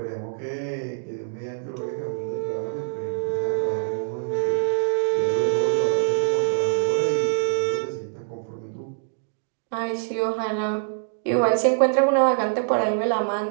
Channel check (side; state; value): left; silent; digital silence